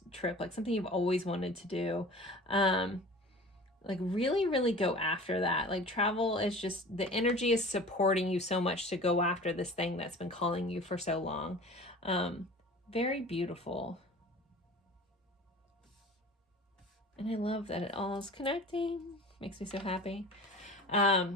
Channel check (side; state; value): both; normal; correlation 0.41